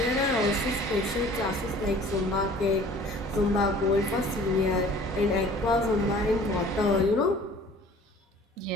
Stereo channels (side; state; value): both; normal; correlation 0.49